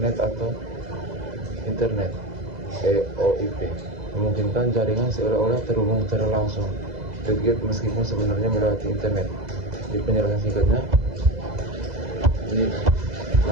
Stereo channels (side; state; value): left; late; 2.0 ms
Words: atau internet. EOIP memungkinkan jaringan seolah-olah terhubung secara langsung tergate meskipun sebenarnya melewati internet. Di penjelasan singkatnya, ini